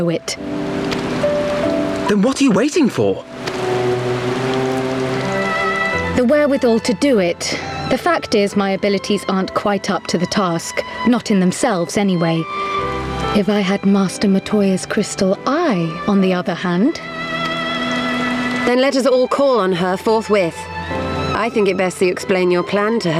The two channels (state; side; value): identical; both; correlation 1.00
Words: it. Then what are you waiting for? The wherewithal to do it. The fact is, my abilities aren't quite up to the task. Not in themselves, anyway. If I had Master Matoya's crystal eye, on the other hand... Then let us all call on her forthwith. I think it best you explain your plan to